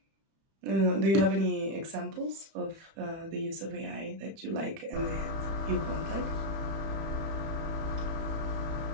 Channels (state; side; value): late; left; 31 ms